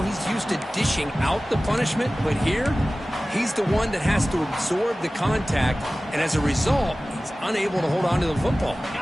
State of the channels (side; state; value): both; normal; correlation 0.97